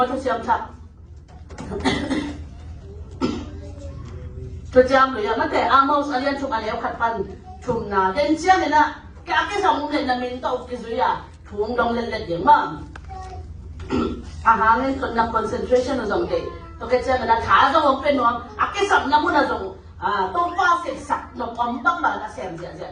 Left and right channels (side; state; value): both; identical; correlation 1.00